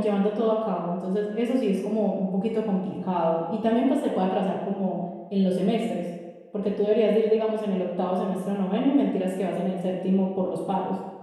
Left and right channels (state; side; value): identical; both; correlation 1.00